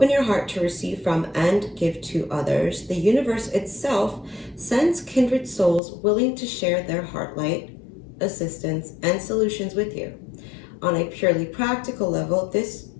your heart to receive from and give to others, the universe itself sends kindred souls willing to share their heart light, assistance, and solutions with you. On a purely practical level, this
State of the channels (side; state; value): right; drops out; at 5.8 s